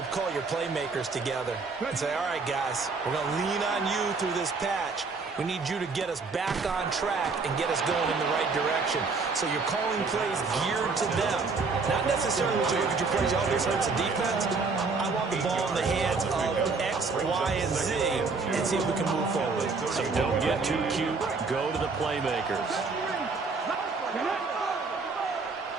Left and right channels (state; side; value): quieter; left; 4.3 dB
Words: call your playmakers together and say, all right, guys, we're going to lean on you through this patch. We need you to get us back on track and get us going in the right direction. So you're calling plays geared to them. Not necessarily when you look at your plays, oh, this hurts the defense. I want the ball in the hands of X, Y, and Z and see if we can move forward. So don't get too cute. Go to the playmakers.